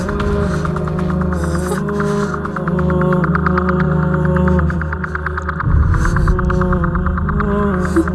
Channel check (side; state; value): both; identical; correlation 1.00